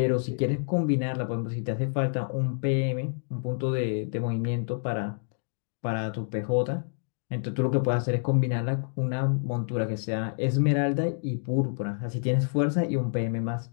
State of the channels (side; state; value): right; silent; digital silence